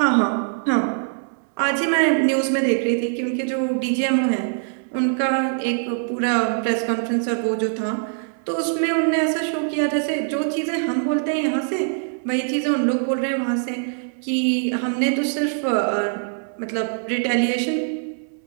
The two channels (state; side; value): silent; left; 64 dB below the other